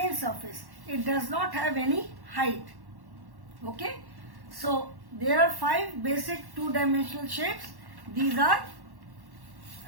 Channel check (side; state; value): left; late; 1.1 ms